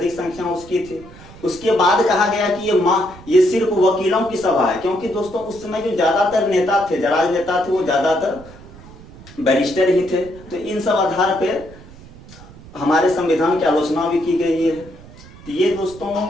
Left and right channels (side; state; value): right; noise; rumble, 19 dB below the sound